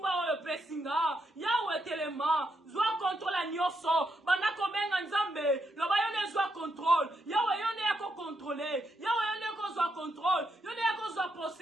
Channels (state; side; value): normal; both; correlation 0.80